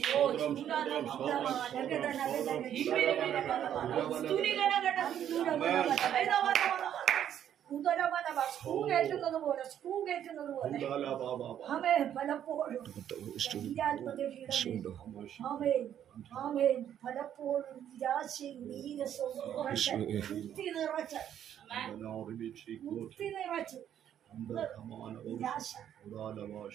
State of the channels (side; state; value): left; quieter; 10.1 dB